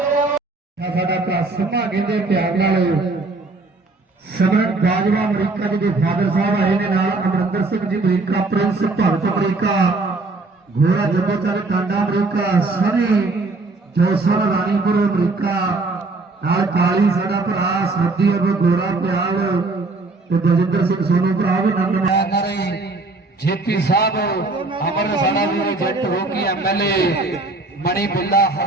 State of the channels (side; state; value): left; quieter; 3.4 dB